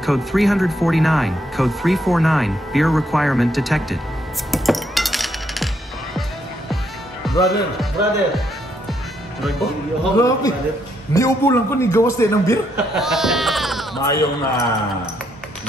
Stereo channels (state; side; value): normal; both; correlation 0.75